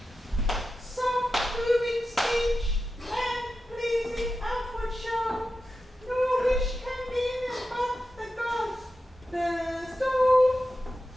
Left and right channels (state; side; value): normal; both; correlation 0.91